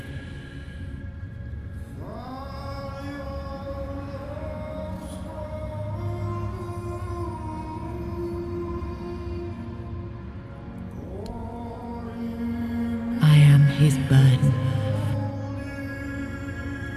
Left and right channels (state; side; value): identical; both; correlation 1.00